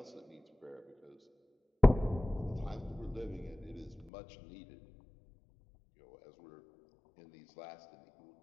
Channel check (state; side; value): drops out; right; at 4.1 s